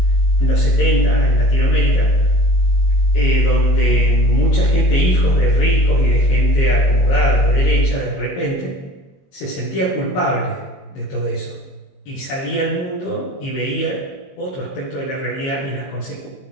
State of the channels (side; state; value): right; late; 22 ms